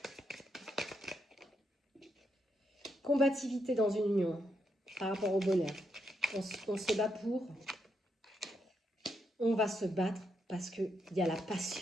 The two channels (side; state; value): both; normal; correlation 0.80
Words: Combativité dans une union par rapport au bonheur. On se bat pour. On va se battre parce qu'il y a la